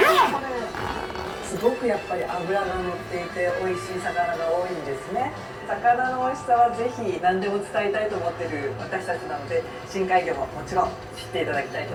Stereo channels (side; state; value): both; identical; correlation 1.00